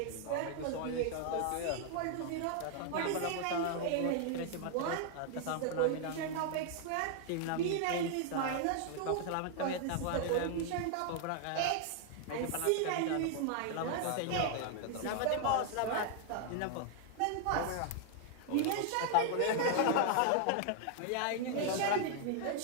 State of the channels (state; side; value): different; both; correlation 0.00